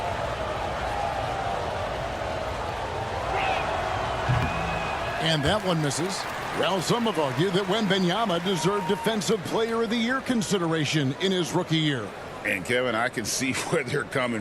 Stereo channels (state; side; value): identical; both; correlation 1.00